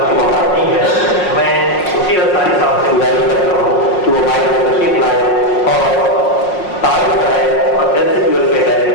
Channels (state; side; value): late; right; 5.5 ms